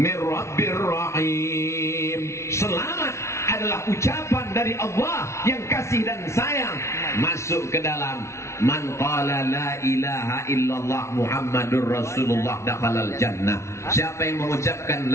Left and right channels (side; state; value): right; late; 0.13 ms